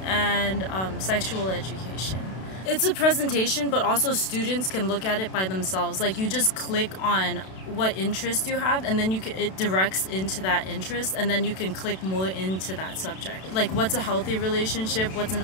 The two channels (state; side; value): late; right; 32 ms